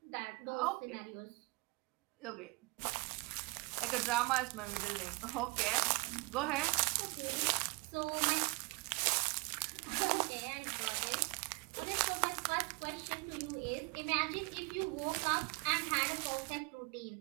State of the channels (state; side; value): quieter; left; 27.9 dB